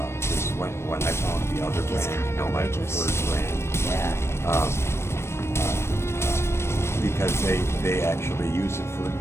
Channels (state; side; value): late; right; 0.13 ms